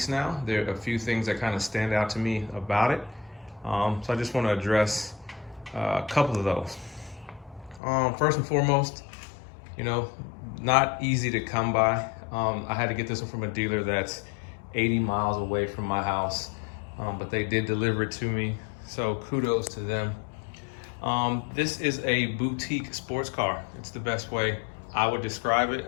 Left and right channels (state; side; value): drops out; right; at 7.8 s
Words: now. There are a few things that kind of stand out to me about it. So I just want to address a couple of those. First and foremost, not easy to come by. I had to get this one from a dealer that's 80 miles away from my house, but they did deliver it to me, so kudos to them. This is a boutique sports car. It's the best way I would describe it.